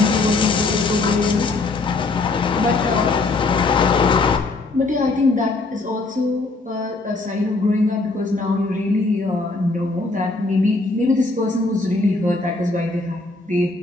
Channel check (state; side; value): quieter; right; 3.4 dB